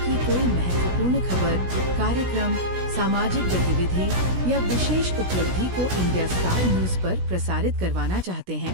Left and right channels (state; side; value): late; left; 16 ms